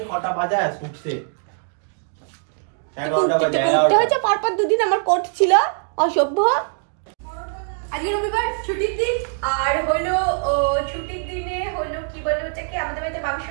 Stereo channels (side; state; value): left; silent; 64 dB below the other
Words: কটা বাজে উঠছে। পরপর দুদিন আমার কোট ছিল, অসভ্য। আজকে রবিবার, ছুটির দিন। আর হলো ছুটির দিনে হলো কি বলো ওটাকে, আমাদের বাড়িতে মাংস